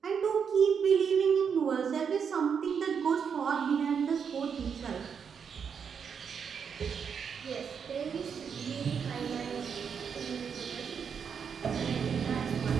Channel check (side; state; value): left; quieter; 6.8 dB